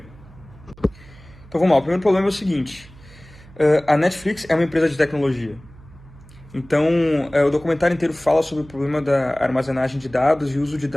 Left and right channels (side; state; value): right; noise; hum, 22 dB below the sound